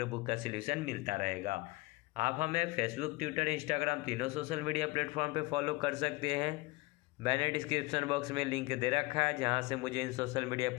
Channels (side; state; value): right; quieter; 22.3 dB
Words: बुक का सोल्यूशन मिलता रहेगा। आप हमें फेसबुक, ट्विटर, इंस्टाग्राम तीनों सोशल मीडिया प्लेटफॉर्म पर फॉलो कर सकते हैं। मैंने डिस्क्रिप्शन बॉक्स में लिंक दे रखा है, जहां से मुझे इन सोशल मीडिया